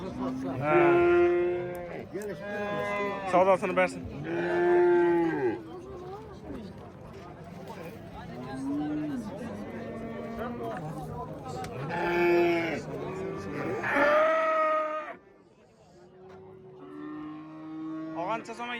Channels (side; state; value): both; identical; correlation 1.00